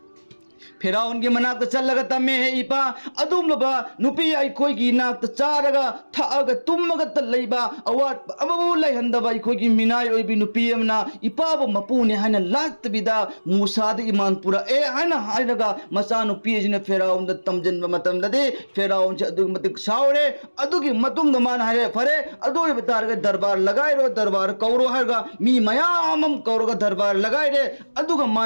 फेराउन की मनाक चल्लगा तम्मे है इपा अदुमलबा नुपी अइखोइगी नाक चारगा थागा तुमगा त लैबा अवाट अबबु लैहंदबा अइखोइगी मिनाई ओइबि नुपी अमना इपाबो मपुने हाना लातबिदा मूसा द ईमान पुरा ए हाना हायरगा मचा नुपी जिने फेराउन द तमजनबा मतमददे फेराउन से अदुग मतिक सावरे अदुगी मतुंग द मान हारे फरे अदुई बतारगा दरबार लगाइरो दरबार कौरो हारगा मी मयामम कौरोगा दरबार लगाइरे अदुगा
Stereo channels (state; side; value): inverted; both; correlation -1.00